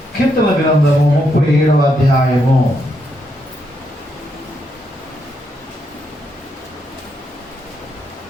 కీర్తన గ్రంథము 37వ అధ్యాయము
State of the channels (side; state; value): both; normal; correlation 0.79